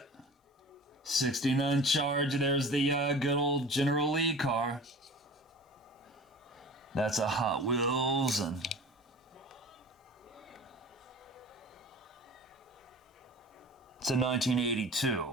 69 Charge. There's the good old General Lee car. That's a Hot Wheels, and it's a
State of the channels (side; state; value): both; normal; correlation 0.39